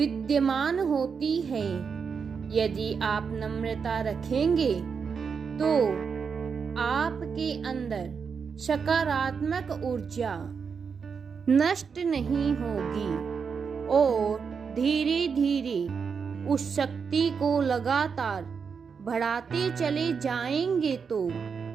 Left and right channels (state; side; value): quieter; left; 6.0 dB